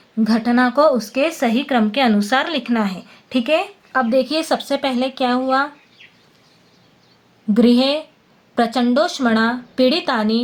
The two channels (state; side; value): identical; both; correlation 1.00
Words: घटना को उसके सही क्रम के अनुसार लिखना है। ठीक है, अब देखिए सबसे पहले क्या हुआ। गृहे प्रचंडोष्मणा